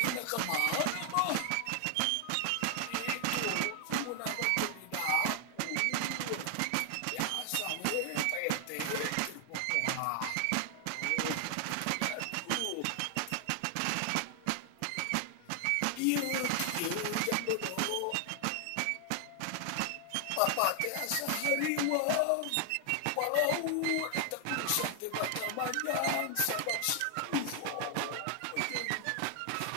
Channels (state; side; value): different; both; correlation 0.00